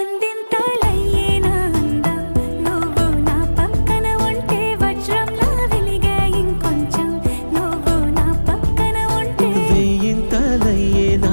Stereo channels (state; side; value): inverted; both; correlation -1.00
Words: అందింతలయ్యే నా అందం నువ్వు నా పక్కన ఉంటే వజ్రంలా వెలిగే ఇంకొంచెం నువ్వు నా పక్కన ఉంటే వేయింతలయ్యే నా